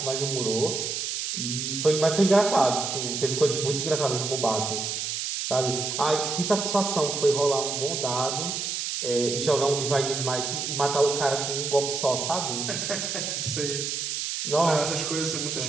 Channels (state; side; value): noise; right; hiss, 3 dB below the sound